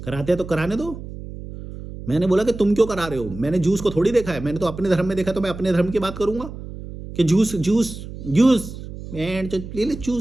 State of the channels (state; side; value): noise; right; hum, 11 dB below the sound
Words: कराते हैं तो कराने दो। मैंने बोला कि तुम क्यों करा रहे हो, मैंने जूस को थोड़ी देखा है, मैंने तो अपने धर्म में देखा, तो मैं अपने धर्म की बात करूंगा कि जूस जूस जूस एंड ले ले